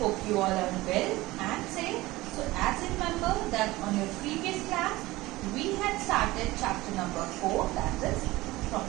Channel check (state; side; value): quieter; left; 19.2 dB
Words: you all are well and safe. So as you remember that on your previous class, we had started chapter number 4, that is from